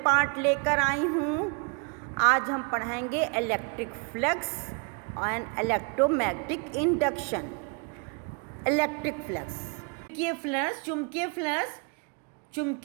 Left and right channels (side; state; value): left; quieter; 35.9 dB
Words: पार्ट लेकर आई हूँ। आज हम पढ़ाएंगे electric flux and electromagnetic induction. Electric flux, चुंबकीय फ्लक्स